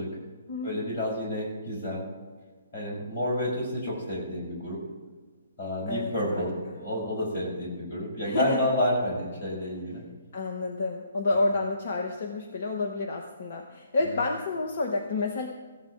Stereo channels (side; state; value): both; inverted; correlation -0.62